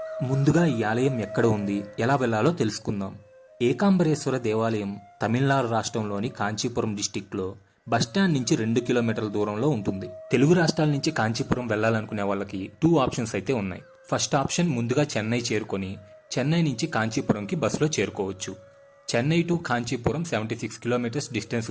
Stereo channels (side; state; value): both; identical; correlation 1.00